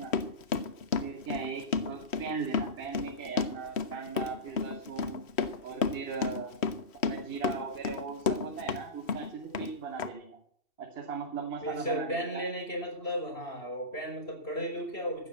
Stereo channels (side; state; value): right; late; 3.1 ms